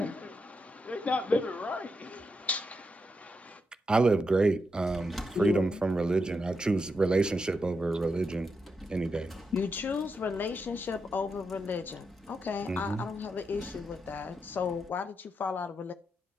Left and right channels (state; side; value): normal; both; correlation 0.84